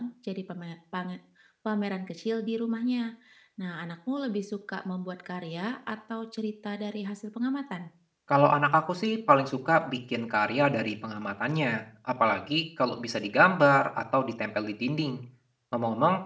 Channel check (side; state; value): both; identical; correlation 1.00